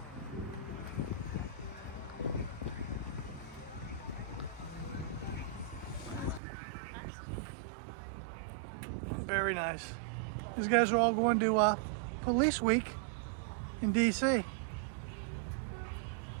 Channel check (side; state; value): left; drops out; at 6.4 s